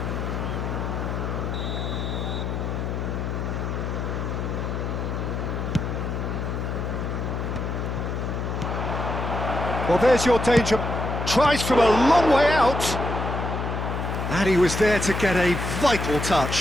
Well, there's your danger. Tries from a long way out. And he was there to get a vital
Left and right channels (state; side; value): noise; left; hum, 3 dB below the sound